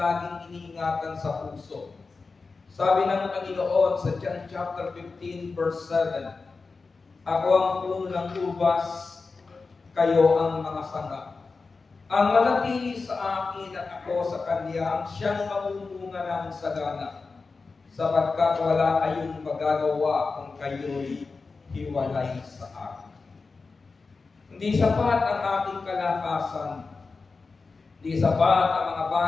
iniingatan sa puso. Sabi ng Panginoon sa John chapter 15 verse 7, ako ang puno ng ubas, kayo ang mga sanga. Ang manatili sa akin at ako sa Kanya, siyang mamumunga ng sagana, sapagkat wala kayong magagawa kung kayo'y hiwalay sa akin. Hindi sapat ang ating kalakasan, hindi sapat ang mga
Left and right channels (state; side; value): quieter; right; 4.2 dB